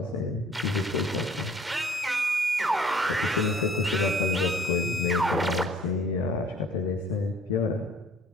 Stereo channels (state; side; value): normal; both; correlation 0.54